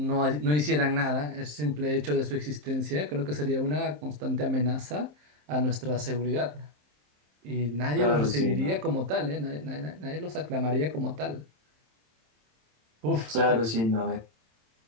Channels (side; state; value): left; late; 27 ms